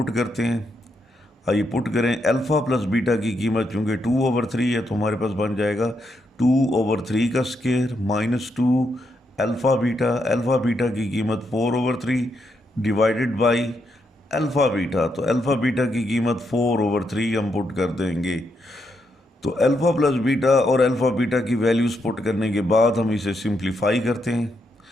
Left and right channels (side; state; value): both; normal; correlation 0.80